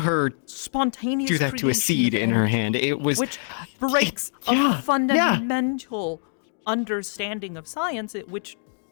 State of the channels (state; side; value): silent; right; digital silence